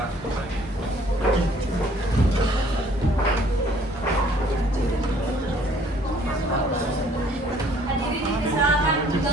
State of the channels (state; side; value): normal; both; correlation 0.59